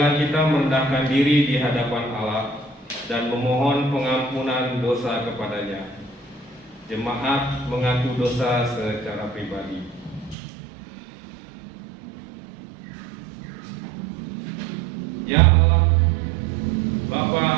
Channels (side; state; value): left; drops out; at 10.4 s